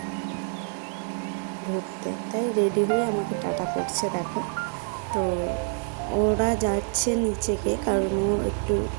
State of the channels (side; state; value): left; silent; 60 dB below the other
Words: ঘুরতে, তাই রেডি হয়ে আমাকে টাটা করছে। দেখো, তো ওরা যাচ্ছে নিচে গিয়ে, কারণ ও একটু